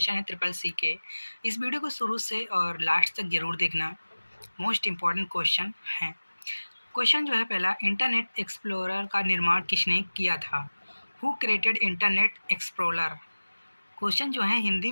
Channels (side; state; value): both; inverted; correlation -1.00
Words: है ट्रिपल सी के। इस वीडियो को शुरू से और लास्ट तक जरूर देखना, मोस्ट इम्पॉर्टेंट क्वेश्चन है। क्वेश्चन जो है पहला, इंटरनेट एक्सप्लोरर का निर्माण किसने किया था? Who created internet explorer? Question जो है हिंदी